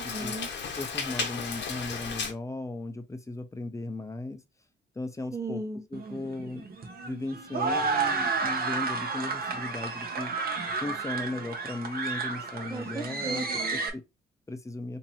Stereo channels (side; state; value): both; normal; correlation 0.24